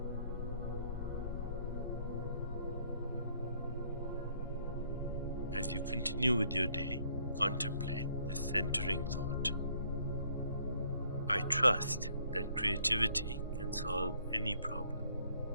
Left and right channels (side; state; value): both; inverted; correlation -0.65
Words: As you continue with your day, contemplate this centering thought. I trust that creativity can solve any problem.